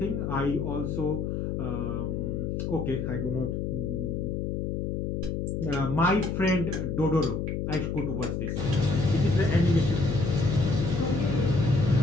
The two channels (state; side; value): noise; left; hum, 2 dB below the sound